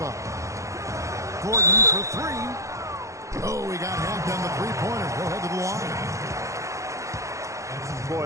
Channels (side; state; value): left; late; 0.15 ms